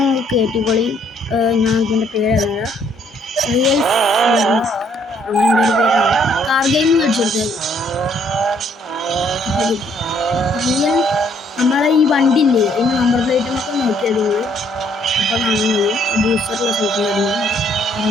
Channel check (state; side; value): normal; both; correlation 0.67